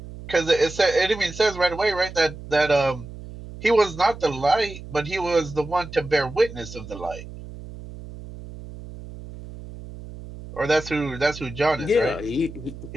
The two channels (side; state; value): right; noise; hum, 13 dB below the sound